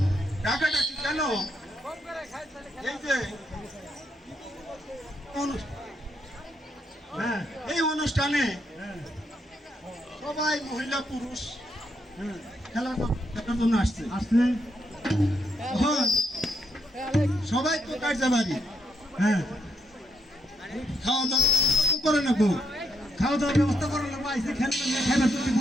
টাকাটা কি কেন এই যে হ্যাঁ এই অনুষ্ঠানে হ্যাঁ সবাই মহিলা পুরুষ খেলার জন্য আসছে আসলে এখন সবাই তো কাজে বাড়ি হ্যাঁ খাওয়া দাওয়া করে নেবো খাওয়া দাওয়ার ব্যবস্থা করার লোক আইসে খেলবেন না, খাইবার তো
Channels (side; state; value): both; normal; correlation 0.78